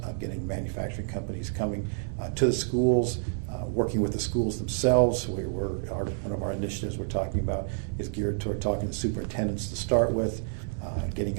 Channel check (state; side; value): silent; left; 59 dB below the other